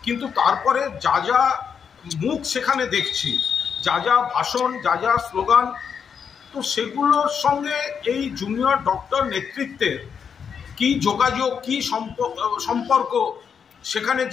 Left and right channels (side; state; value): right; quieter; 6.9 dB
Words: কিন্তু তারপরে যা যা মুখ সেখানে দেখছি, যা যা ভাষণ, যা যা স্লোগান, তো সেগুলোর সঙ্গে এই জুনিয়র ডক্টর নেতৃত্বের কি যোগাযোগ, কি সম্পর্ক, সেখানে